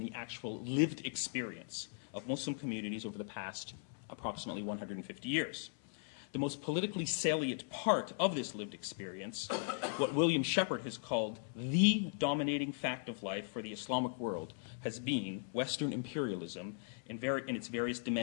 the actual lived experience of Muslim communities over the past approximately 150 years. The most politically salient part of this lived experience, what William Shepard has called the dominating fact of life for the Islamic world, has been Western imperialism in its various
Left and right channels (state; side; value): silent; right; 52 dB below the other